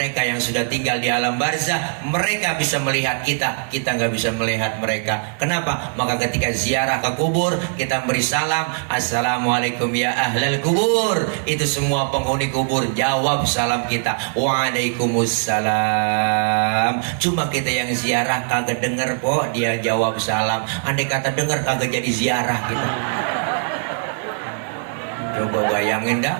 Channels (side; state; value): left; silent; digital silence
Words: yang sudah tinggal di alam barzah, mereka bisa melihat kita, kita nggak bisa melihat mereka. Kenapa? Maka ketika ziarah ke kubur, kita beri salam, assalamualaikum ya ahlal kubur. Itu semua penghuni kubur jawab salam kita, waalaikumsalam. Cuma kita yang ziarah kagak denger po, dia jawab salam. Andai kata denger kagak jadi ziarah kita. Coba bayangin dah